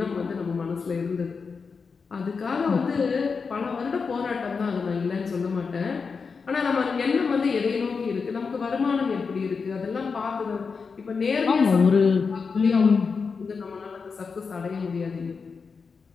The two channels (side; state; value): right; quieter; 5.2 dB